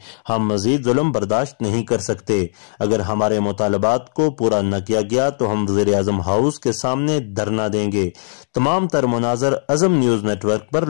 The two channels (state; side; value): silent; right; digital silence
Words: ہم مزید ظلم برداشت نہیں کر سکتے۔ اگر ہمارے مطالبات کو پورا نہ کیا گیا تو ہم وزیر اعظم ہاؤس کے سامنے دھرنا دیں گے۔ تمام تر مناظر عزم نیوز نیٹ ورک پر